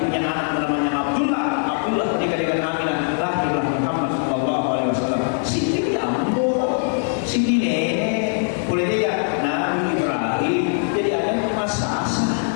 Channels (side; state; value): right; silent; 65 dB below the other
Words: punya anak namanya Abdullah. Abdullah menikah dengan Aminah, lahirlah Muhammad sallallahu alaihi wasallam. Siti ambo, Siti nenek, boleh tidak Nabi Ibrahim jadi ada masa asa.